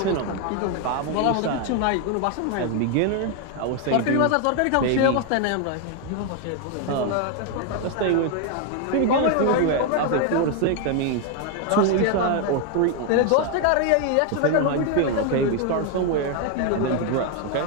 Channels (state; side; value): different; both; correlation 0.01